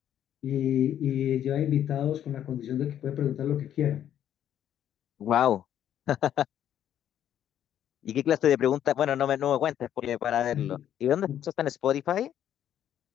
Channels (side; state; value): right; quieter; 10.5 dB